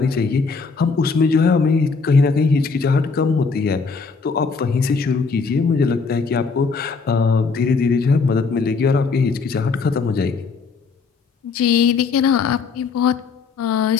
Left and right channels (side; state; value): right; quieter; 4.8 dB